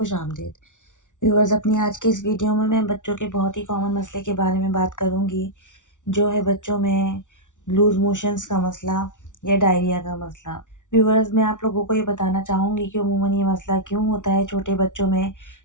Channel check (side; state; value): right; late; 0.87 ms